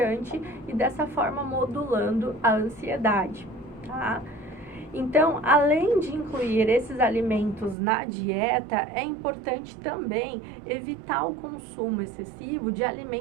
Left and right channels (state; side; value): drops out; left; at 7.8 s